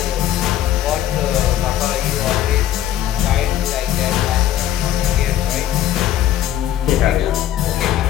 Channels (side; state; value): right; quieter; 11.8 dB